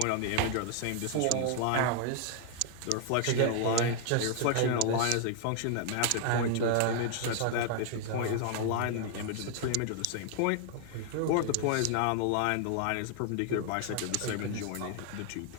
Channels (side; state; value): both; different; correlation 0.00